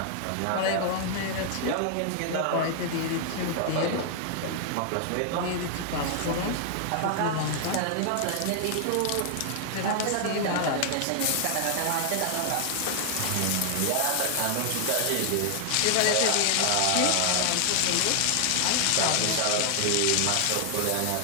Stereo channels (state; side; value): different; both; correlation 0.00